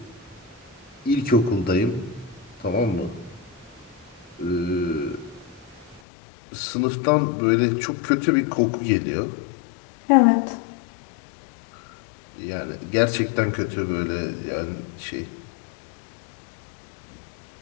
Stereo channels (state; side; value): drops out; right; at 6.0 s